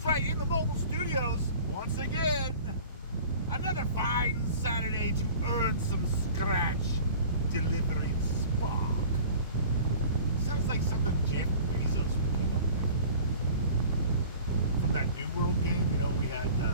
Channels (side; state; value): both; inverted; correlation -0.44